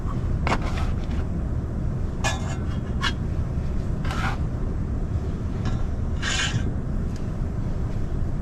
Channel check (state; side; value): identical; both; correlation 1.00